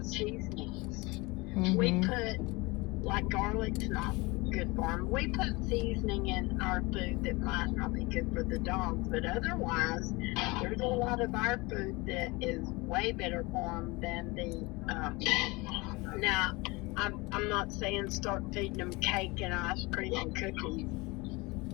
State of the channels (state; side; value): quieter; right; 24.4 dB